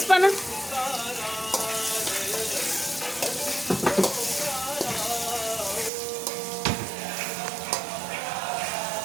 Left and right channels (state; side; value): drops out; left; at 5.9 s